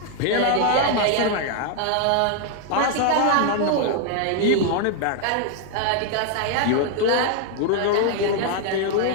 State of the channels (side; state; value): both; different; correlation 0.00